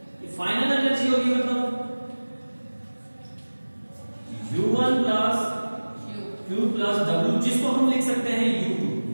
फाइनल एनर्जी होगी मतलब U1 plus Q plus W, जिसको हम लिख सकते हैं U2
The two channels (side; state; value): both; inverted; correlation -1.00